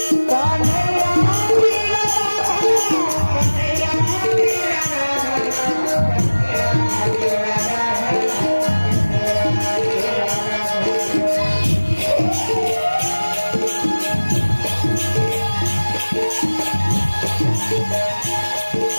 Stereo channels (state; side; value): inverted; both; correlation -1.00